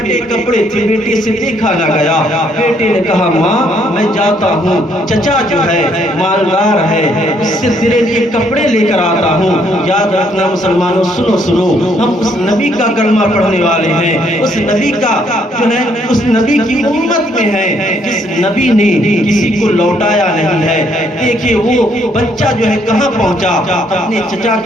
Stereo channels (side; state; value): both; normal; correlation 0.69